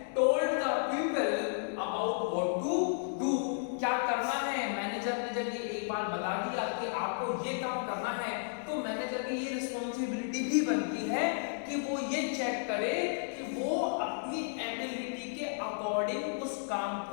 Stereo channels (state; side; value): silent; right; digital silence